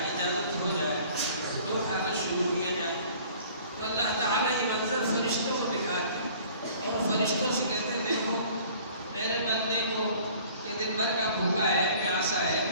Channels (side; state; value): both; inverted; correlation -0.51